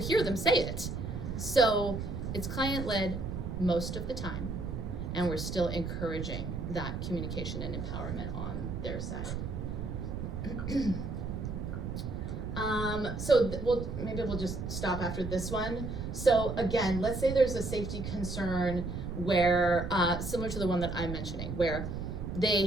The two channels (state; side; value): noise; right; rumble, 5 dB below the sound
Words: them say it. So it's client-led most of the time, and we're still encouraging that communication and empowerment on their side. Maybe we'll just stop after this one. So again, let's say there's a safety concern where, similar to the one that I'm mentioning, where they